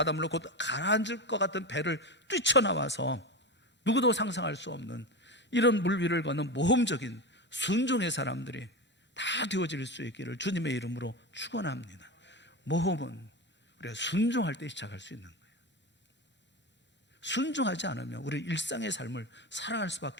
곧 가라앉을 것 같은 배를 뛰쳐나와서 누구도 상상할 수 없는 이런 물 위를 걷는 모험적인 순종의 사람들이 다 되어질 수 있기를 주님의 이름으로 축원합니다. 모험은 우리가 순종할 때 시작할 수 있는 거예요. 순종하지 않으면 우리 일상의 삶을 살아갈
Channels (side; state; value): both; normal; correlation 0.21